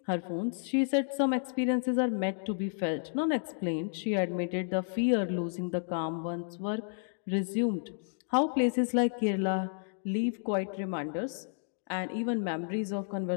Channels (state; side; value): silent; right; digital silence